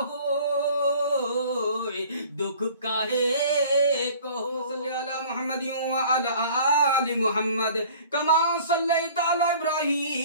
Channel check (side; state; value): both; inverted; correlation -0.48